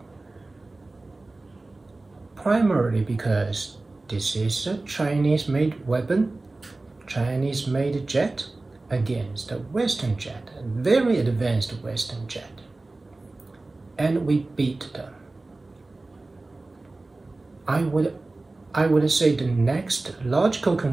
primarily because this is a Chinese-made weapon, Chinese-made jet against a Western jet, a very advanced Western jet. and we beat them. I would say the next logical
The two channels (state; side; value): quieter; left; 3.2 dB